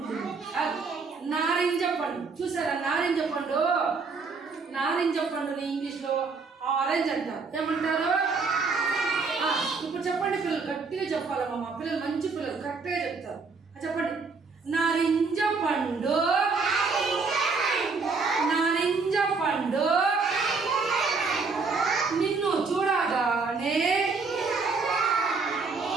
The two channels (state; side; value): quieter; left; 4.5 dB